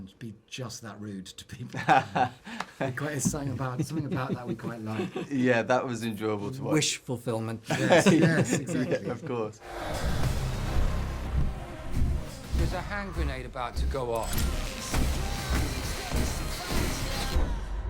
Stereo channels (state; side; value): identical; both; correlation 1.00